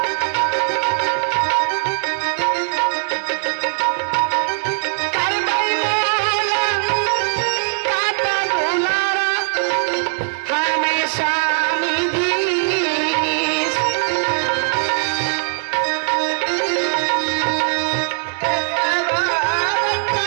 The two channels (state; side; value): silent; left; digital silence